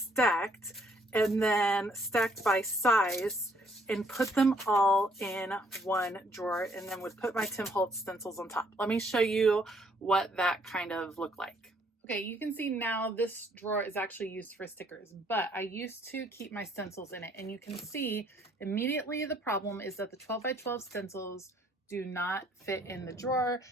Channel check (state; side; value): normal; both; correlation 0.66